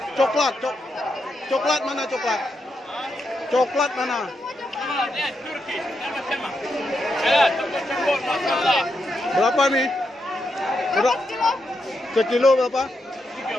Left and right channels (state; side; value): normal; both; correlation 0.83